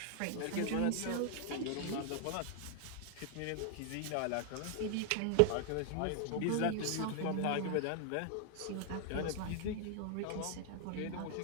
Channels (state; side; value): different; both; correlation 0.00